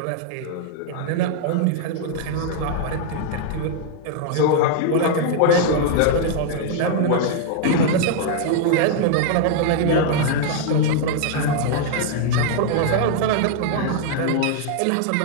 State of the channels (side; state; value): both; different; correlation 0.00